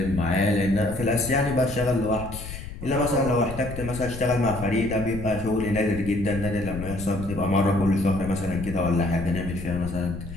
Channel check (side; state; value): left; noise; rumble, 10 dB below the sound